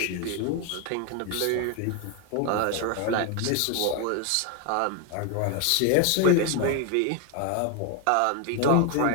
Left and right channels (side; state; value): both; different; correlation 0.01